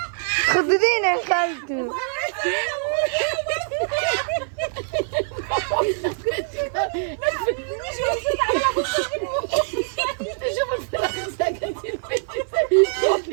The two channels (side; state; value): left; silent; 55 dB below the other